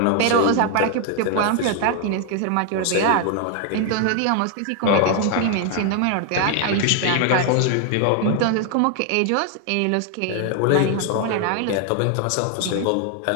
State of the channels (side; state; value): both; different; correlation 0.00